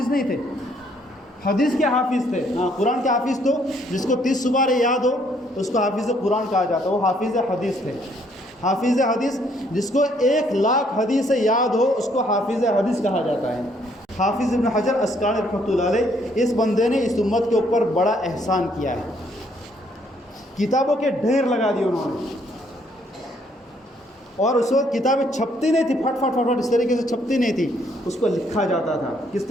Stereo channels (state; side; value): normal; both; correlation 0.67